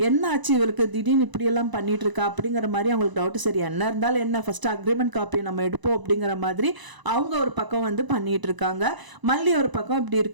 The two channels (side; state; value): left; late; 1.0 ms